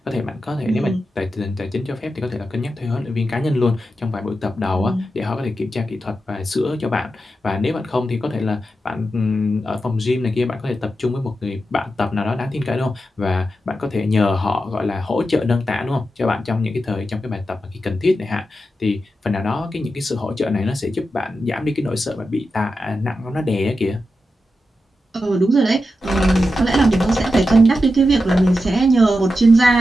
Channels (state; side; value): normal; both; correlation 0.89